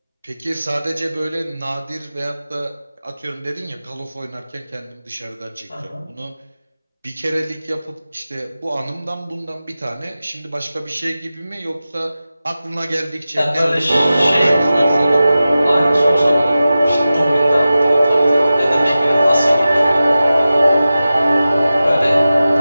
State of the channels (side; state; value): both; inverted; correlation -0.95